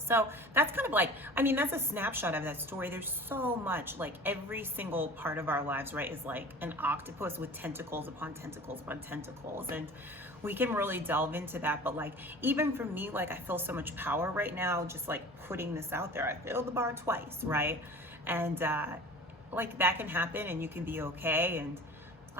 that's kind of like, I mean, that's a snapshot of that story. There's so much, like every single part of our lives, right, is like an octopus with tentacles upon tentacles upon tentacles. And we can really delve into that. But like, even for me, like I feel so much power right now, just like putting this out there. I failed the bar twice, right? And like that can happen, and you can be okay,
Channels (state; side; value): normal; both; correlation 0.41